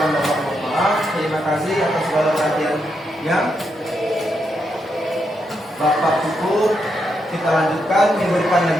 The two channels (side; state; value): both; normal; correlation 0.82